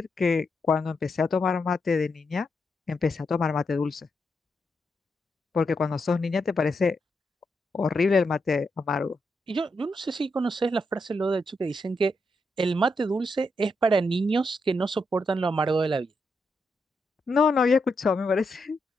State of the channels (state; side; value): normal; both; correlation 0.82